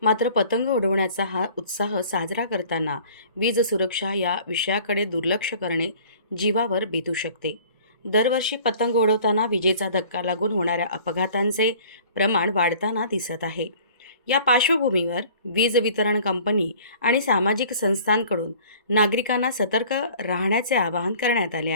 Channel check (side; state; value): both; inverted; correlation -0.50